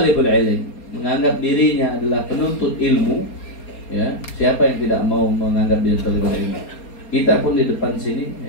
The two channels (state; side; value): late; right; 4.3 ms